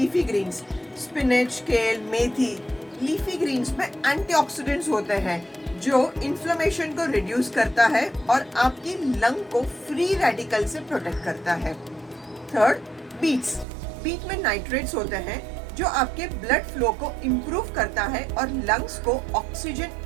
ग्रीन्स, स्पिनच, केल, मेथी। लीफी ग्रीन्स में एंटीऑक्सीडेंट्स होते हैं जो इन्फ्लेमेशन को रिड्यूस करता है और आपकी लंग को फ्री रेडिकल से प्रोटेक्ट करता है। Third, beets. बीट में नाइट्रेट्स होते हैं जो आपके ब्लड फ्लो को इम्प्रूव करता है और लंग्स को ऑक्सीजन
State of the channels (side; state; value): left; drops out; at 13.7 s